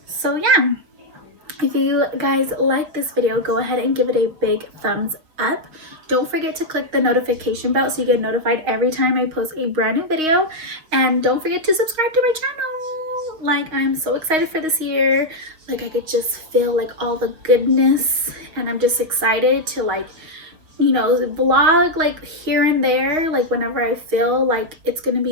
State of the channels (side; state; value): left; late; 6.3 ms